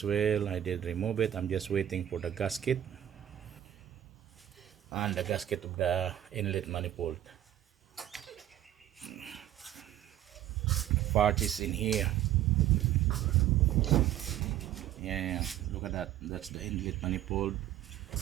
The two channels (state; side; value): quieter; left; 12.0 dB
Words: well I did remove it. I'm just waiting for the gasket and the gasket of the inlet manifold. Part is in here. Yeah, look at that. That's the inlet manifold,